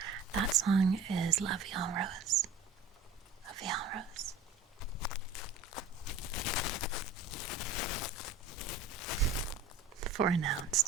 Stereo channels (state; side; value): quieter; left; 4.2 dB